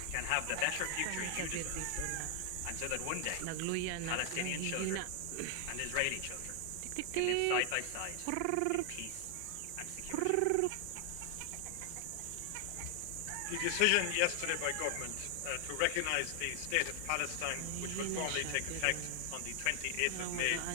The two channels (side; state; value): both; different; correlation 0.00